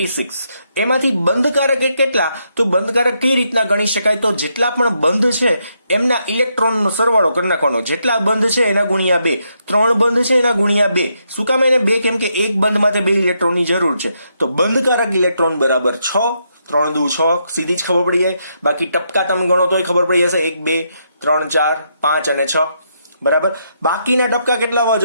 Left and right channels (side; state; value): both; inverted; correlation -0.78